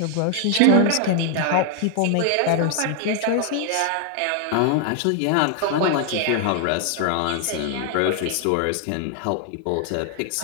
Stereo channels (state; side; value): different; both; correlation 0.00